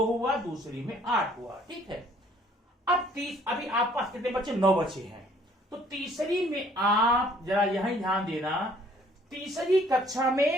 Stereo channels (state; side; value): normal; both; correlation 0.59